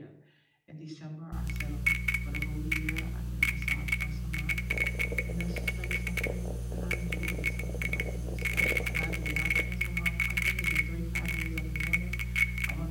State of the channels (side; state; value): both; identical; correlation 1.00